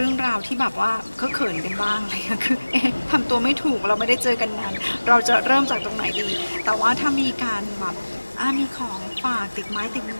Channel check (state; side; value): inverted; both; correlation -1.00